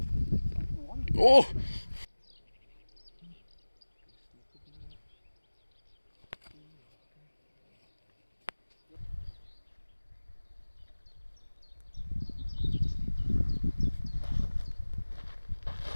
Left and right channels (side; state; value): both; inverted; correlation -1.00